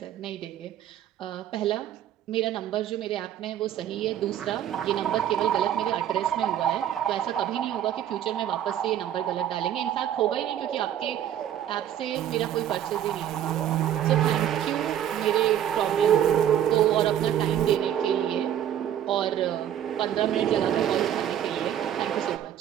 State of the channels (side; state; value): left; quieter; 10.6 dB